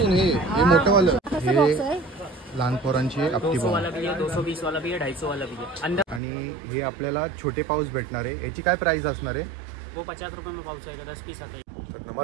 हे मोठं वालं, हे लहान पोरांची आपटी 200 वाला भी है, 220 वाला भी है, 250 वाला भी है अंदर। आणि हे आपल्याला छोटे पाऊस भेटणार आहे। याची काय प्राइस असणार आहे? वो 50 रुपये में पाउच आएगा, 10 पीस आता है। तर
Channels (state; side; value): drops out; left; at 6.2 s